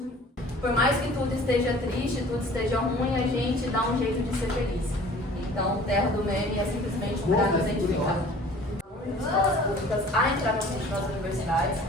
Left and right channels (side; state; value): both; normal; correlation 0.48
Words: Por mais que tudo esteja triste, tudo esteja ruim, a gente dá um jeito de ser feliz. Então, terra do meme é simplesmente para nos identificar. Escolas públicas a entrar nas universidades,